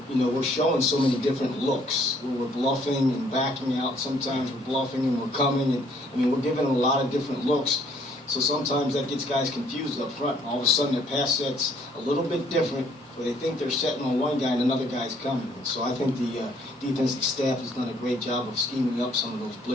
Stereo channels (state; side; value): normal; both; correlation 0.63